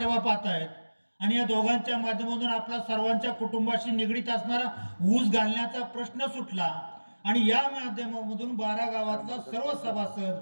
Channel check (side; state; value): both; inverted; correlation -1.00